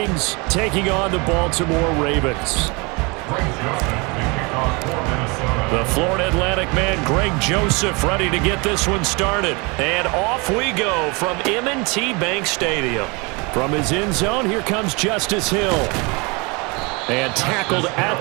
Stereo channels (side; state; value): left; quieter; 28.5 dB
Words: taking on the Baltimore Ravens. The Florida Atlantic man, Greg Joseph, ready to get this one started. And off we go from M&T Bank Stadium. From his end zone, here comes Justice Hill. And tackled